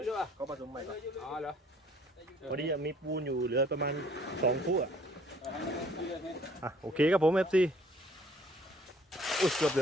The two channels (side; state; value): both; normal; correlation 0.58